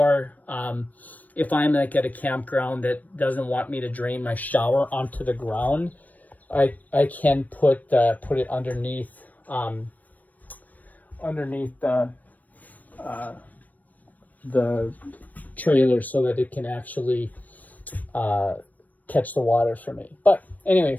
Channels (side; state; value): right; late; 0.078 ms